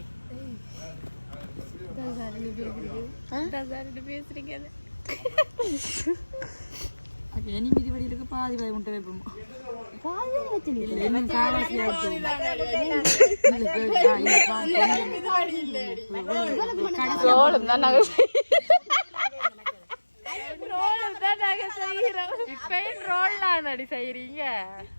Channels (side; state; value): both; inverted; correlation -1.00